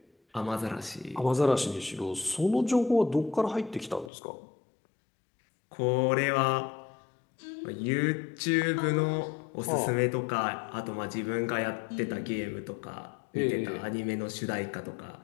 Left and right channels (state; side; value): drops out; right; at 4.1 s